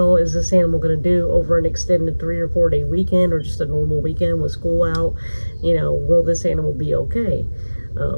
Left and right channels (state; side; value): inverted; both; correlation -1.00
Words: is this animal going to do over an extended 3 or 4 day weekend or just a normal weekend with school out. You know, will this animal be okay?